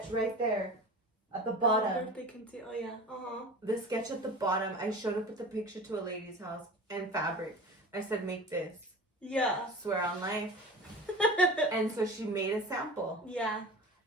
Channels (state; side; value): normal; both; correlation 0.35